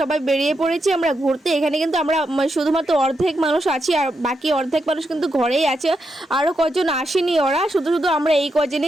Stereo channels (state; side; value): normal; both; correlation 0.84